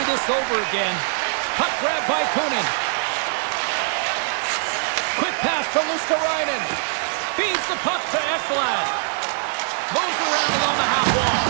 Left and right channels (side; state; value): left; silent; 64 dB below the other